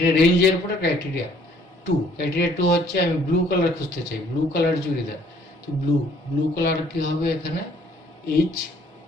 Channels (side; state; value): both; normal; correlation 0.60